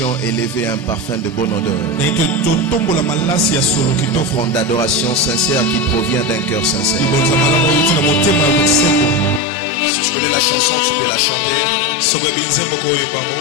élever un parfum de bonne odeur. Une offrande d'adoration sincère qui provient d'un cœur sincère. Si tu connais la chanson, tu peux la chanter.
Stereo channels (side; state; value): right; drops out; at 9.4 s